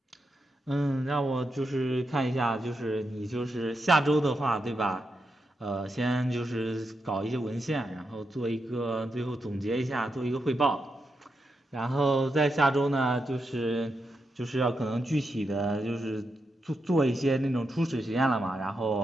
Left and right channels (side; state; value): both; normal; correlation 0.85